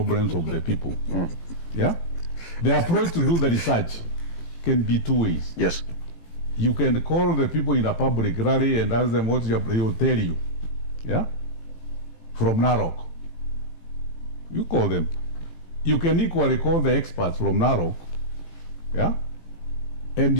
of the people, yeah, the approach to do the research can be two ways. Yes. You can call the people in a public rally and ask them what they will tell you. Yeah? From Narok. You call them. You can equally call the experts from Narok. Yeah? And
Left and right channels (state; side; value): late; right; 18 ms